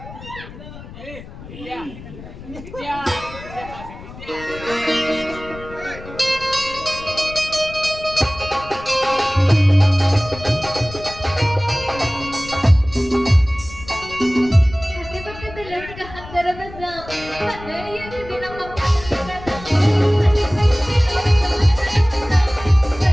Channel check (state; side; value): noise; left; rumble, 15 dB below the sound